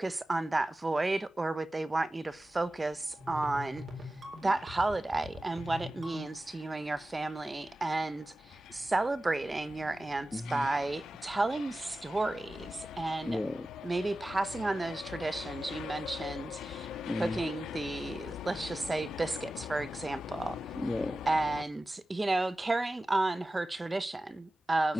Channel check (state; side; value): normal; both; correlation 0.94